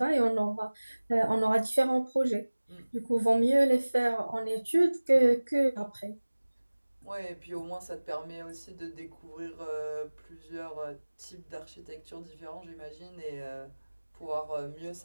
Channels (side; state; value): both; inverted; correlation -1.00